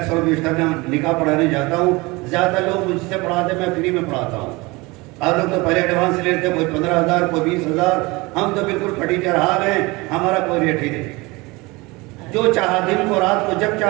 بیشتر نکاح پڑھانے جاتا ہوں، زیادہ لوگ مجھ سے پڑھاتے، میں فری میں پڑھاتا ہوں. آپ لوگ تو پہلے ایڈوانس لیتے، کوئی 15,000 کوئی 20,000، ہم تو بالکل پھٹی چڑھا گئے، ہمارا کوئی ریٹ ہی نہیں. جو چاہا دن کو رات کو جب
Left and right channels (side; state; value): left; quieter; 23.9 dB